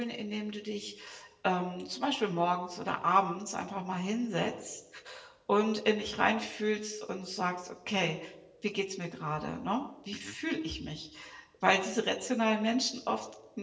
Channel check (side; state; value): both; identical; correlation 1.00